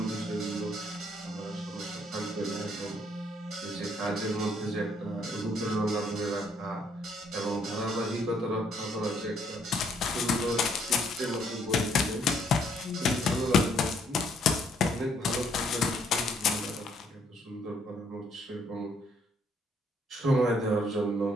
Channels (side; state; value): both; normal; correlation 0.68